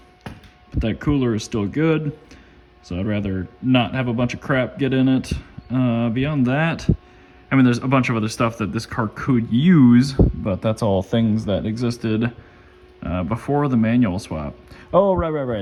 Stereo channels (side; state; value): both; identical; correlation 1.00